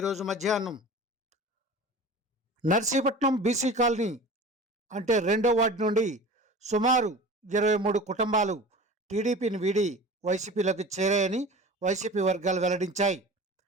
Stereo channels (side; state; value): both; normal; correlation 0.37